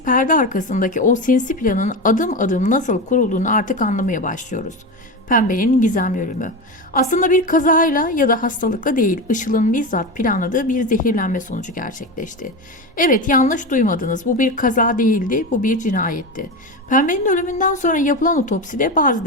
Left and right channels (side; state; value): both; normal; correlation 0.20